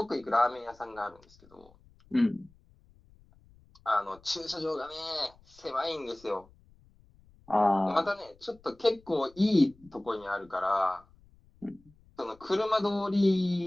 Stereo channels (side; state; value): left; noise; rumble, 28 dB below the sound